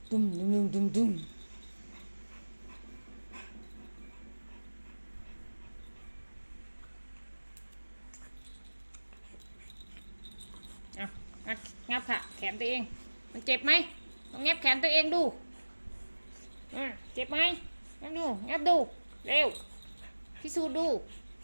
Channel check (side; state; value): both; inverted; correlation -1.00